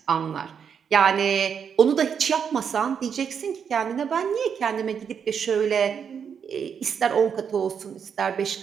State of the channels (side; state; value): left; quieter; 7.2 dB